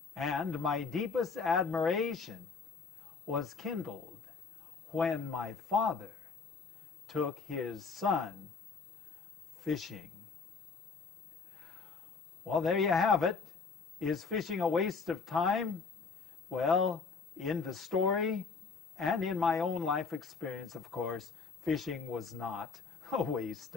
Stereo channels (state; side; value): quieter; right; 4.9 dB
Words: And my deepest admiration was kindled when my father took his son fishing. Well, there you have it. Is fishing a waste of time? Well, in the story and in my own life experience, of course, fishing was not a waste